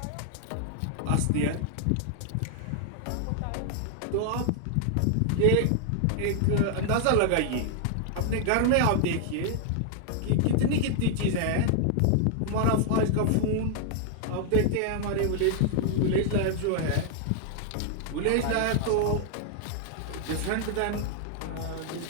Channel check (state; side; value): different; both; correlation 0.00